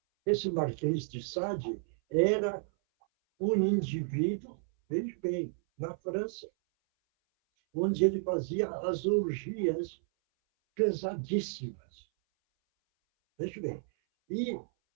Esse Marquês de Sade era um indivíduo, veja bem, na França, onde ele fazia as orgias pesadíssimas. Veja bem. E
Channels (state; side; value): silent; left; 56 dB below the other